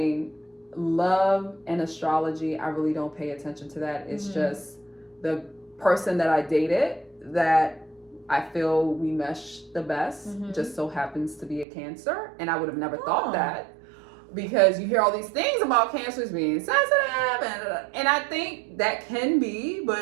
love and astrology, I really don't pay attention to that. It's just the person that I dated that I feel we mesh the best just so happens to be a Cancer. And I would have never thought that, because you hear all these things about Cancers being sensitive, and I think that can be,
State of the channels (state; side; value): drops out; left; at 11.7 s